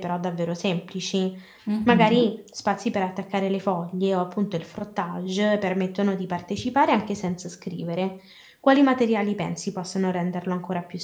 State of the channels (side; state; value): both; identical; correlation 1.00